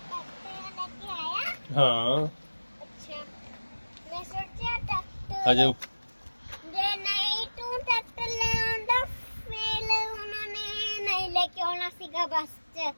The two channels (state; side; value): inverted; both; correlation -1.00